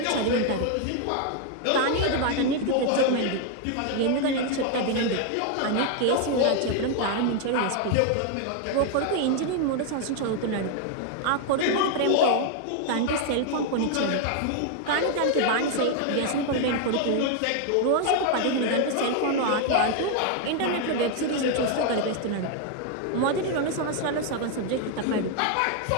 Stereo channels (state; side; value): different; both; correlation 0.00